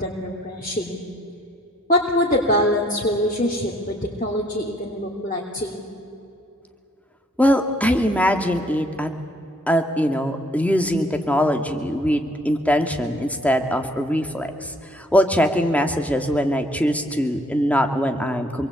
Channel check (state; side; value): normal; both; correlation 0.64